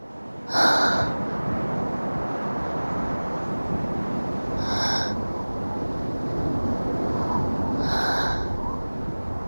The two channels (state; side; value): inverted; both; correlation -1.00